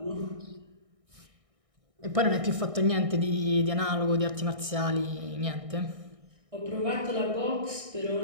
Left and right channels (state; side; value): late; left; 1.6 ms